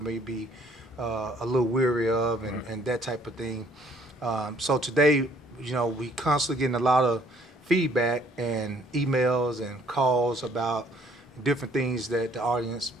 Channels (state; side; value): normal; both; correlation 0.61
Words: may be a little weary of, right. and that type of thing. So today, we constantly getting a lot of feedback and emails and calls about different things that the audience